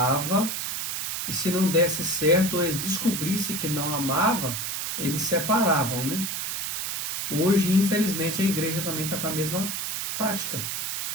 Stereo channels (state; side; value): noise; right; hiss, 3 dB below the sound